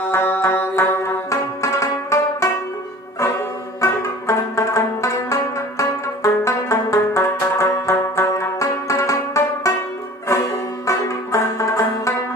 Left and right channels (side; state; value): both; normal; correlation 0.44